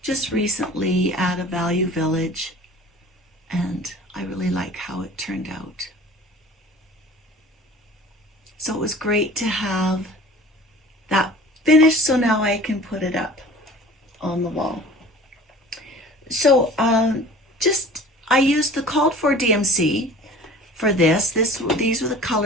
just recently at a Value Village, and I really like how it turned out. So it was great to have that finished, so now I can put it up on the wall. So I used the called for DMC for this. These were the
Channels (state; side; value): normal; both; correlation 0.44